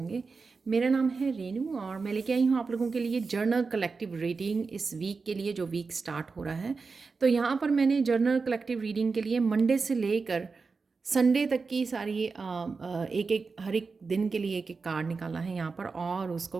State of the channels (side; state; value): left; quieter; 4.5 dB